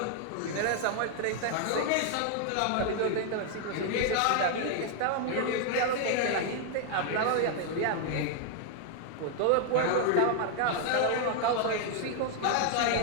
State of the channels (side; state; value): both; different; correlation 0.00